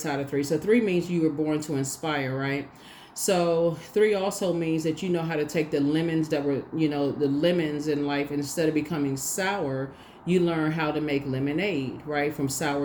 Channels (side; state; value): both; identical; correlation 1.00